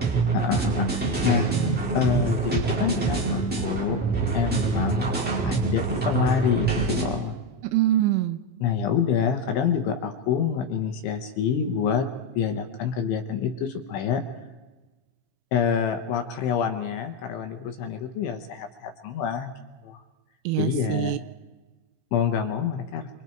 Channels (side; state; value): both; normal; correlation 0.10